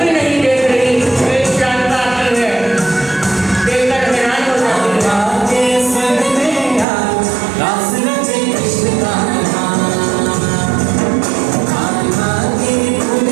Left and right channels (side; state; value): left; drops out; at 6.9 s